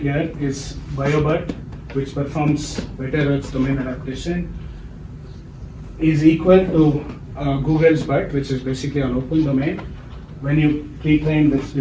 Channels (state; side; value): identical; both; correlation 1.00